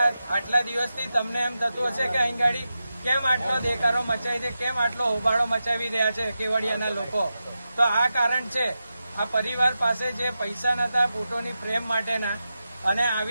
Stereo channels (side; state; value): both; inverted; correlation -0.90